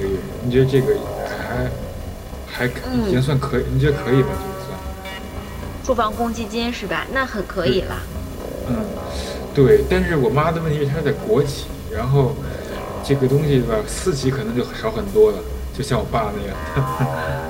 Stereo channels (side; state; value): both; identical; correlation 1.00